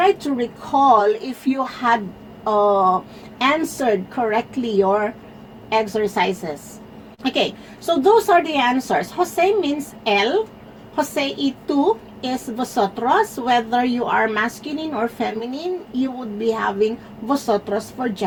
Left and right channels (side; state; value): both; identical; correlation 1.00